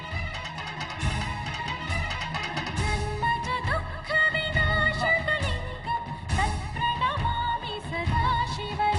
జన్మజ దుఃఖ వినాశక లింగం తత్ప్రణమామి సదా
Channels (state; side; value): identical; both; correlation 1.00